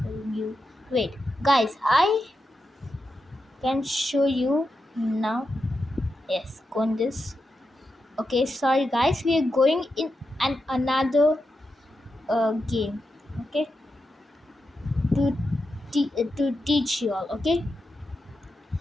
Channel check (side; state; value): both; normal; correlation 0.88